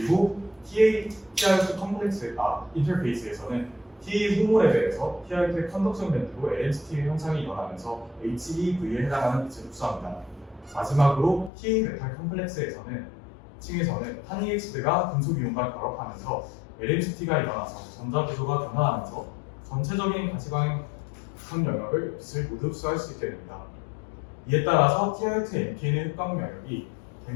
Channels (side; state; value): right; drops out; at 11.5 s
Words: TiO2 컴플렉스 인터페이스에서는 TA 호모 레벨에서 TiO2의 컨덕션 밴드로 LNCT 형상이 일어나면서 HEV에 해당하는 빛을 흡수합니다. 마지막으로 TA 메탈 컴플렉스에서는 층에서는 탄이엑시드가 금속 이온과 결합하면서 LNCT가 일어나서 전자 구조가 변화하면서 전체적인 가시광 영역을 빛을 모두 흡수할 수 있게 됩니다. 이에 따라서 TiO2 NPN의 흡광 영역이